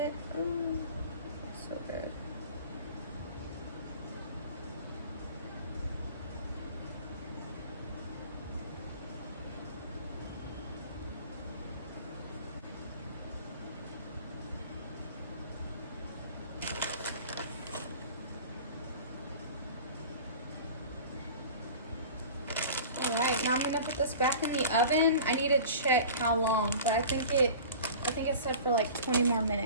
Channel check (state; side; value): inverted; both; correlation -0.40